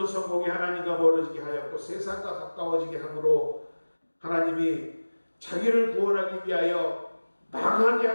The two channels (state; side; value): inverted; both; correlation -1.00